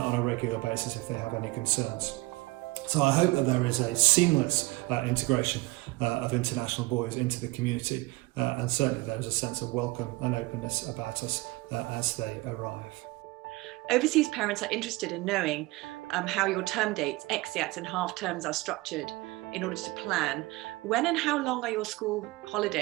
a regular basis if they have any concerns. So I hope that there is a seamless integration of international boys into the community, and certainly there is a sense of welcome and openness about us as they arrive. Overseas parents are interested in knowing how your term dates, exeats and half terms are structured in order to plan. When and how long are your school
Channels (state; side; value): quieter; left; 21.2 dB